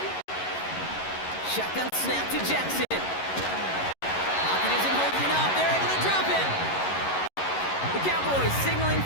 Shotgun snap to Jackson. Pocket isn't holding up. They're able to drop it. The Cowboys signaling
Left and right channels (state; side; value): late; right; 11 ms